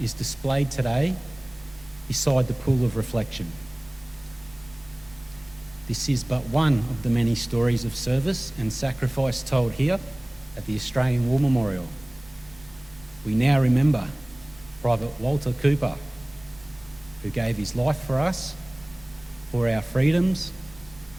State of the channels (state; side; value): noise; right; rumble, 24 dB below the sound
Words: is displayed today beside the pool of reflection. This is but one of the many stories of service and sacrifice told here at the Australian War Memorial. We now remember Private Walter Cooper, who gave his life for us, for our freedoms,